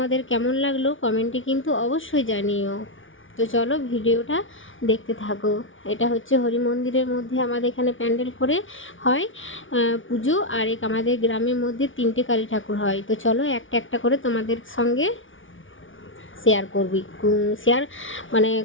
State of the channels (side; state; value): right; late; 0.57 ms